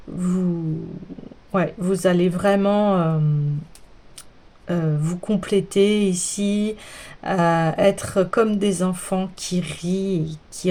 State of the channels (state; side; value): identical; both; correlation 1.00